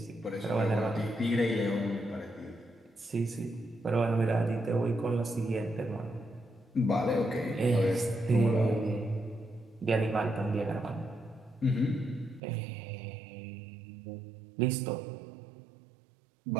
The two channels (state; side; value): drops out; left; at 12.4 s